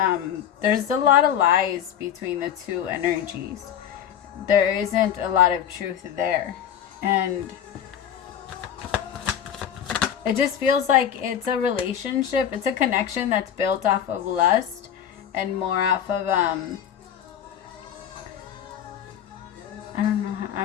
there's a lot of lies between the two energies. There isn't a lot of truth there. And it just feels like it's a relationship. It's a connection that's built off of lust and more off of, I don't know.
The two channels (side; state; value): right; quieter; 9.4 dB